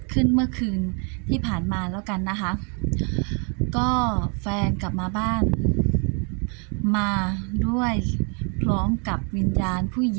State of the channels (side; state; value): left; quieter; 37.3 dB